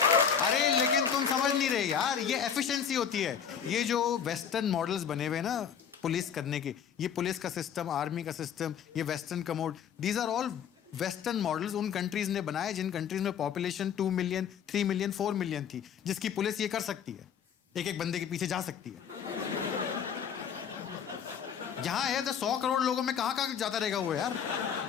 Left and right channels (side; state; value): right; quieter; 7.7 dB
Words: अरे लेकिन तुम समझ नहीं रहे यार, ये एफिशिएंसी होती है। ये जो वेस्टर्न मॉडल्स बने हुए ना पुलिस करने के, ये पुलिस का सिस्टम, आर्मी का सिस्टम, ये western commode, these are all western models उन कंट्रीज ने बनाए जिन कंट्रीज में पॉपुलेशन 2 मिलियन, 3 मिलियन, 4 मिलियन थी, जिसकी पुलिस ये कर सकती है, एक एक बंदे के पीछे जा सकती है। यहाँ है 100 करोड़ लोगों में कहाँ जाता रहेगा वो यार।